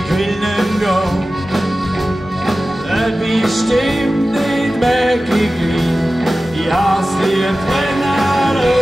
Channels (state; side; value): normal; both; correlation 0.95